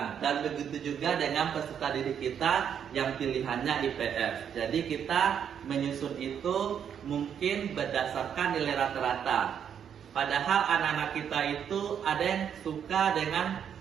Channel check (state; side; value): quieter; left; 8.3 dB